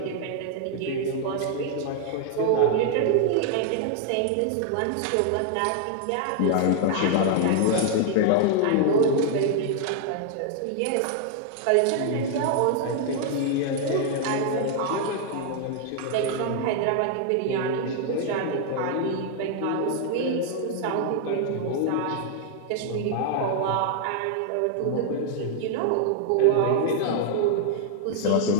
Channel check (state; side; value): different; both; correlation 0.00